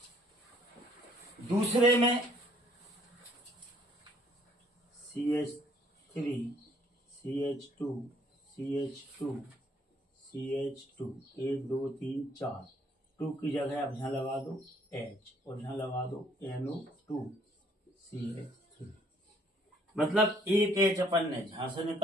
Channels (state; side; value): normal; both; correlation 0.63